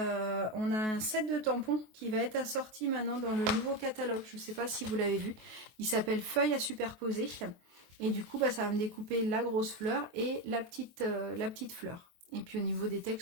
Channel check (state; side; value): late; left; 23 ms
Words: a un set de tampons qui va être assorti maintenant dans le nouveau catalogue. Je ne sais pas si vous l'avez vu. Il s'appelle Feuille à superposer. Et du coup, bah, ça va me découper la grosse fleur et la petite fleur. Et puis au niveau des